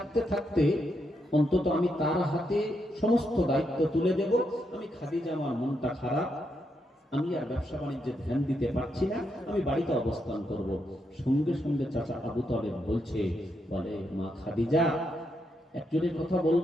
থাকতে অন্তত আমি তার হাতে সমস্ত দায়িত্ব তুলে দেব। আমি খাদিজা, আমার মনটা খারাপ, আমি আর ব্যবসা বাণিজ্যে ধ্যান দিতে পারছি না, আমি বাড়িতে অবস্থান করব। সঙ্গে সঙ্গে চাচা আবু তালেব বলছে, বলে মা খাদিজা, একজনের কথা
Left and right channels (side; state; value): both; normal; correlation 0.81